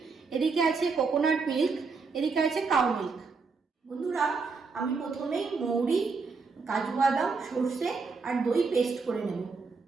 এদিকে আছে কোকোনাট মিল্ক, এদিকে আছে কাউ মিল্ক। বন্ধুরা, আমি প্রথমেই মৌরি, কাজু বাদাম, সর্ষে আর দই পেস্ট করে নেব।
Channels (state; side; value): quieter; left; 4.7 dB